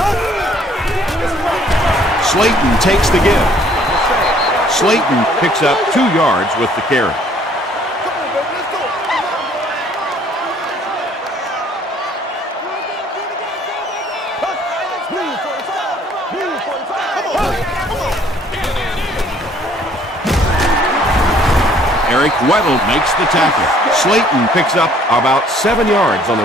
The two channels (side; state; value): both; normal; correlation 0.60